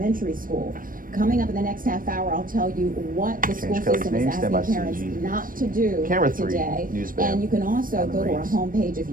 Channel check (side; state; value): left; late; 0.40 ms